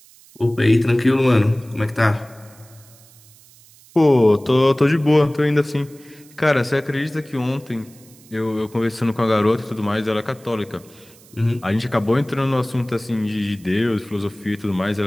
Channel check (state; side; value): noise; right; hiss, 25 dB below the sound